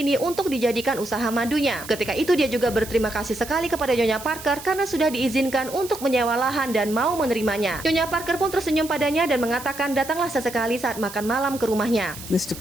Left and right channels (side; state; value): right; noise; hiss, 14 dB below the sound